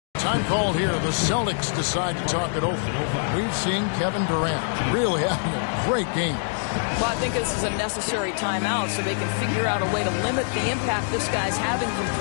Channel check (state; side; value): silent; right; digital silence